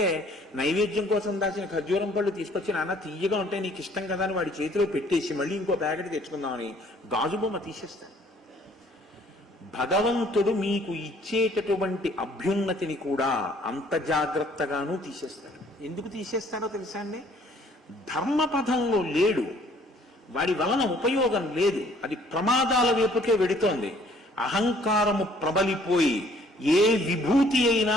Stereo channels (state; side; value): normal; both; correlation 0.59